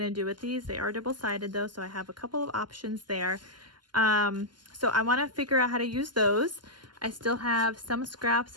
do with these. They are double-sided though, so I have a couple of options there. So I want to figure out how to use those. I still have some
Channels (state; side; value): late; left; 0.71 ms